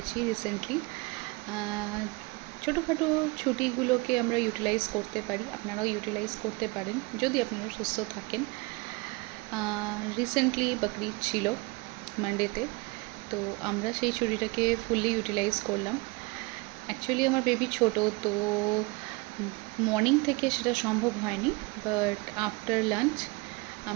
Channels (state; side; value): quieter; left; 25.3 dB